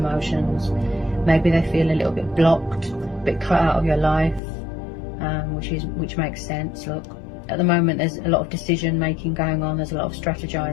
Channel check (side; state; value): right; drops out; at 4.4 s